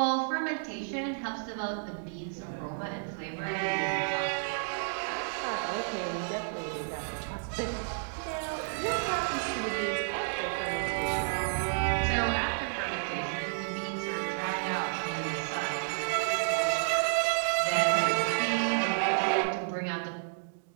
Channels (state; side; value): silent; left; digital silence